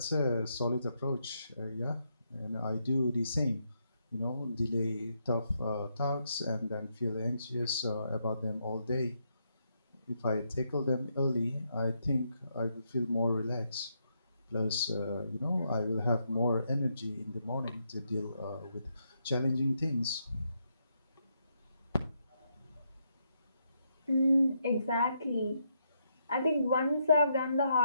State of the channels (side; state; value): both; inverted; correlation -0.79